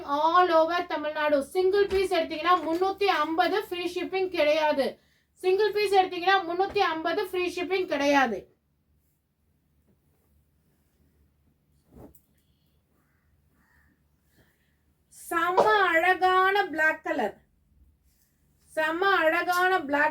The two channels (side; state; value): both; identical; correlation 1.00